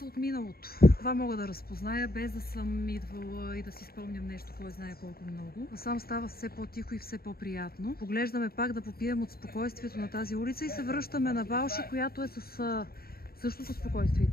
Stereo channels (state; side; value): late; right; 0.44 ms